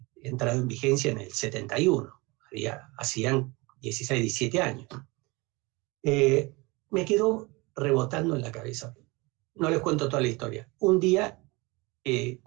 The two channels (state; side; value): quieter; left; 24.8 dB